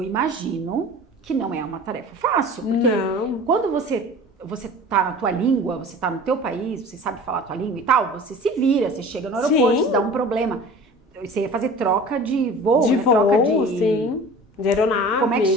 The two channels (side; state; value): both; normal; correlation 0.41